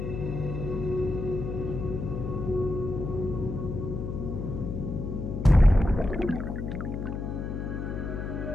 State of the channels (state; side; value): noise; left; hum, 4 dB below the sound